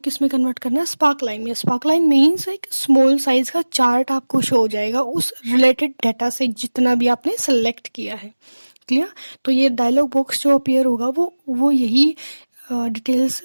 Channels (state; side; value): inverted; both; correlation -1.00